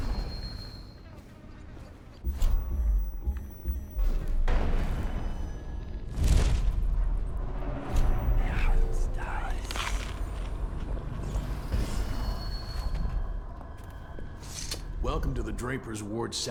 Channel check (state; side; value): identical; both; correlation 1.00